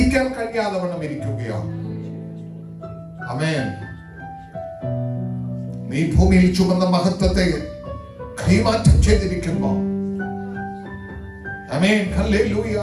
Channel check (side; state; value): both; identical; correlation 1.00